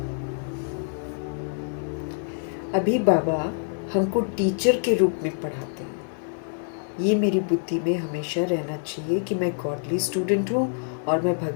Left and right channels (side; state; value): right; silent; 61 dB below the other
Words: अभी बाबा हमको टीचर के रूप में पढ़ाते हैं। ये मेरी बुद्धि में हमेशा रहना चाहिए कि मैं गॉडली स्टूडेंट हूँ और मैं